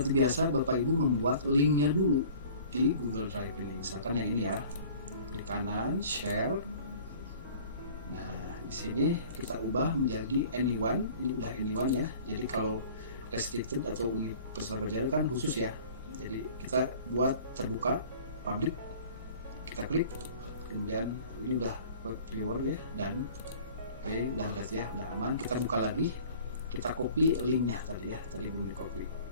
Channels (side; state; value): both; inverted; correlation -0.47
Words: biasa Bapak Ibu membuat linknya dulu di Google Drive ini. Misalkan yang ini ya, klik kanan, share. Nah, di sini kita ubah menjadi anyone. Ini udah anyone ya. Jadi kalau restricted atau peserta belajar kan khusus ya. Jadi kita buat terbuka, public. Kita klik, kemudian ini udah viewer ya, dan oke, udah berarti ya, udah aman. Kita buka lagi, kita copy linknya tadi ya, tadi belum di